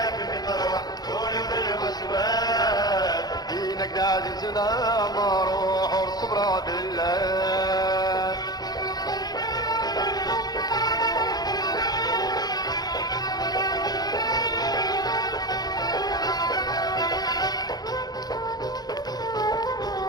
مطروح قولوا للوزواس دينك عزيزنا مروح وصبرا بالله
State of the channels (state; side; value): late; right; 0.19 ms